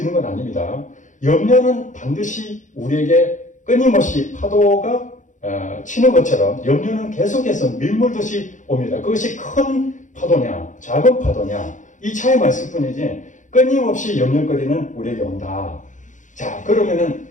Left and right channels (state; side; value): late; right; 0.36 ms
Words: 건 아닙니다. 염려는 반드시 우리에게 끊임없이 파도가 치는 것처럼 염려는 계속해서 밀물듯이 옵니다. 그것이 큰 파도냐 작은 파도냐 이 차이만 있을 뿐이지 끊임없이 염려거리는 우리에게 온다. 자, 그러면은